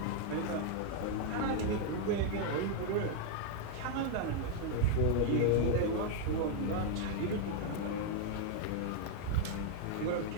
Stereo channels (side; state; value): both; different; correlation 0.00